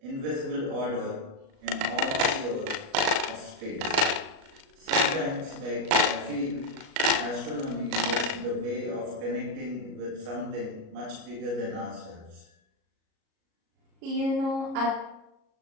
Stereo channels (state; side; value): late; left; 37 ms